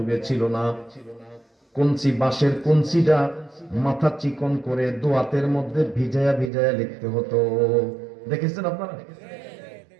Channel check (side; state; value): left; drops out; at 6.5 s